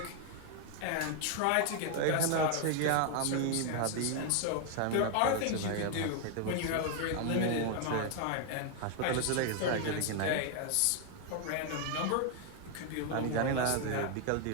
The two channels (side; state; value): both; different; correlation 0.00